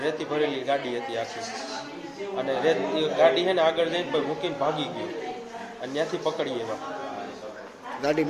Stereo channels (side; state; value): both; identical; correlation 1.00